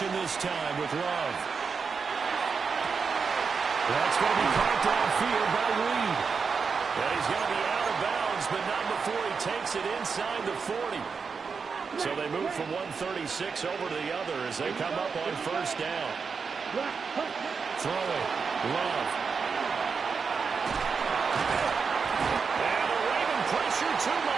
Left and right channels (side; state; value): left; quieter; 5.4 dB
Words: this time with Love. That's going to be caught downfield by Reed. And he's going to be out of bounds, but not before he takes it inside the 40. So they move from 136 over to the other as they come up on 1st down. Throwing. Love. And the Raven pressure too